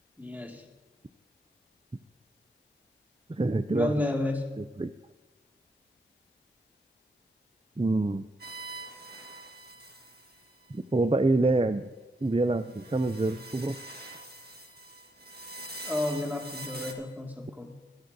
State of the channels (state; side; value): normal; both; correlation 0.79